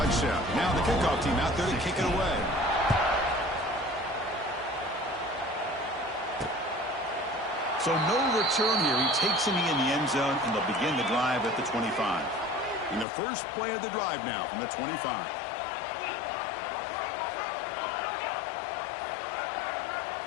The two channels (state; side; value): drops out; right; at 13.1 s